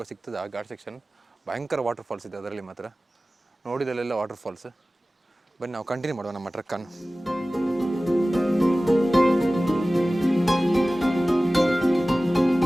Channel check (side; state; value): both; normal; correlation 0.97